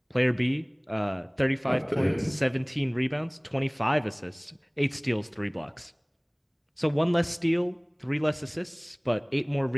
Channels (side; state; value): both; identical; correlation 1.00